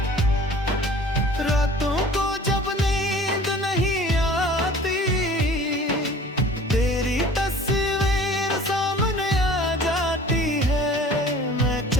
रातों को जब नींद नहीं आती, तेरी तस्वीर सामने आ जाती है। मैं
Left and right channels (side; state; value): both; normal; correlation 0.47